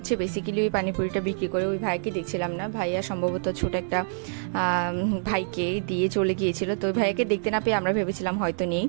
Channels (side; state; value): left; silent; digital silence